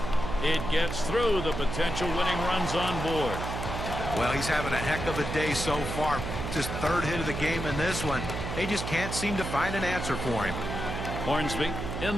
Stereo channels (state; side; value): noise; right; hum, 5 dB below the sound